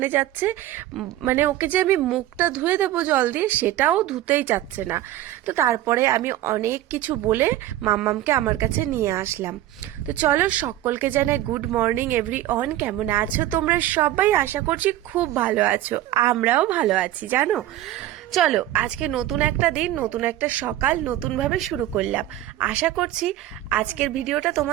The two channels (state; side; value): quieter; left; 14.1 dB